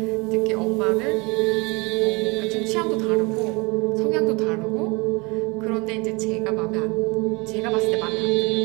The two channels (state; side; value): quieter; left; 27.1 dB